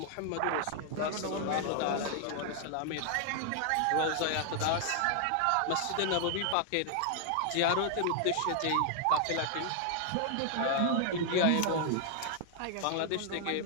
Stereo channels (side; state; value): both; different; correlation 0.00